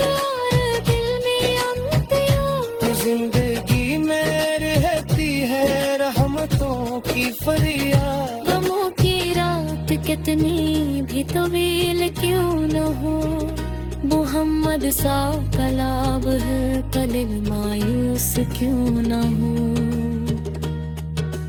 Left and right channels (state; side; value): identical; both; correlation 1.00